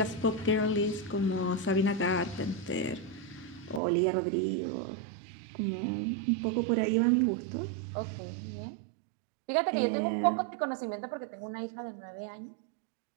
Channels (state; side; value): drops out; left; at 3.8 s